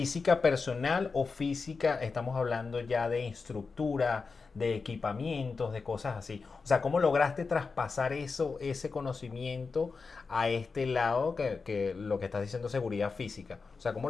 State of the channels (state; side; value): quieter; right; 4.6 dB